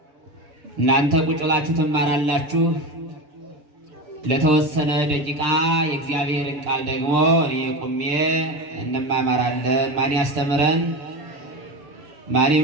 እናንተ ቁጭ ብላችሁ ትማራላችሁ። ለተወሰነ ደቂቃ የእግዚአብሔርን ቃል ደግሞ እኔ ቁሜ እንማማራለን። ማን ያስተምረን? ማን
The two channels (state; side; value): late; left; 6.9 ms